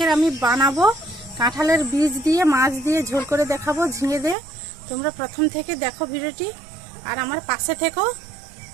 আমি বানাবো কাঁঠালের বীজ দিয়ে মাছ দিয়ে ঝোল করে দেখাবো ঝিঙে দিয়ে। তোমরা প্রথম থেকে দেখো ভিডিওটি আর আমার পাশে থেকো।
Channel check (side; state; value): left; drops out; at 4.4 s